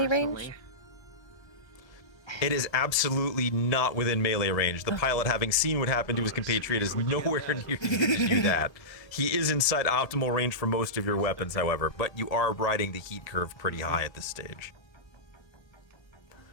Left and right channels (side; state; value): right; late; 1.7 ms